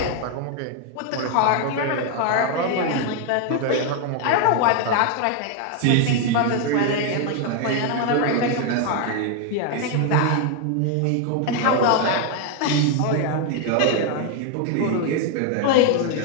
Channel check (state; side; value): different; both; correlation 0.01